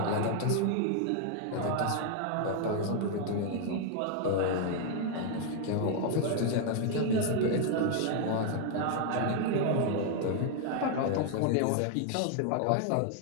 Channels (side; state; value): both; different; correlation 0.00